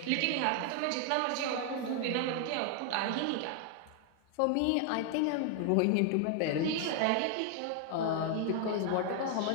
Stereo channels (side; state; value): both; different; correlation 0.00